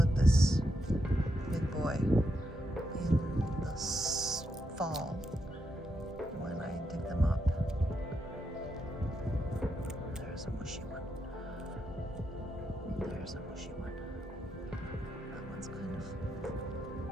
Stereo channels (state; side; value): normal; both; correlation 0.82